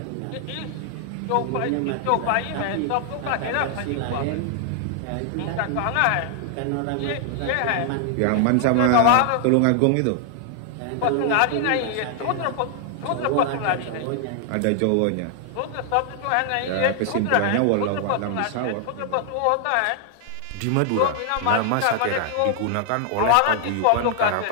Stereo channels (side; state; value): both; different; correlation 0.00